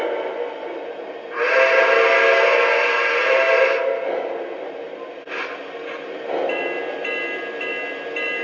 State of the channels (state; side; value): identical; both; correlation 1.00